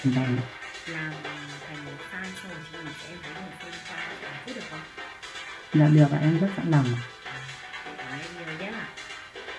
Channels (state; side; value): identical; both; correlation 1.00